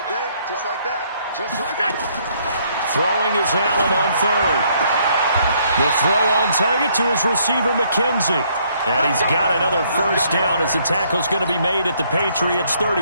day, just like that. Just like that. Throwing is Allen on third. The throw on target to his receiver, McKenzie. And he's got another first down as the tackle's going to be made at the Patriots'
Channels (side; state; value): both; inverted; correlation -0.67